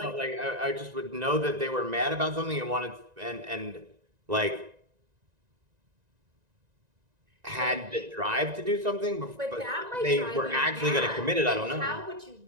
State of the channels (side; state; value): left; late; 1.9 ms